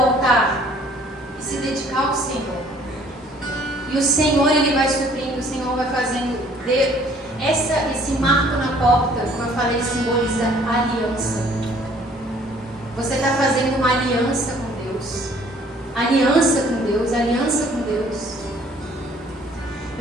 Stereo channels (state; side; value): normal; both; correlation 0.57